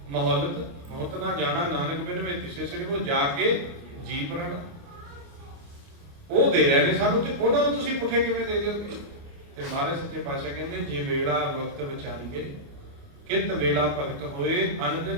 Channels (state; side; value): late; left; 29 ms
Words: ਮਹੌਲਤ ਮੌਤ ਨਾ ਜਾਣਾ, ਨਾਨਕ ਬਿਨ ਵੇ ਤਿਸੇ ਸਰੀ, ਉਹ ਜਾ ਕੇ ਜੀ ਪ੍ਰਾਣ ਉਹ ਦੇ ਰਹੇ ਨੇ ਸਾਨੂੰ, ਤੇ ਉਹਨਾਂ ਨੂੰ ਤੁਸੀਂ ਪੁੱਠੇ ਕਿਵੇਂ ਦੇ ਦਿਓਗੇ? ਤੇ ਮਹਾਰਾਜ ਸੱਚੇ ਪਾਤਸ਼ਾਹ ਕਹਿੰਦੇ, ਜੇ ਵੇਲਾ ਵਕਤ ਵਿਚਾਰੀਏ ਕਿਤ ਵੇਲਾ ਭਗਤ ਹੋਏ, ਅਨ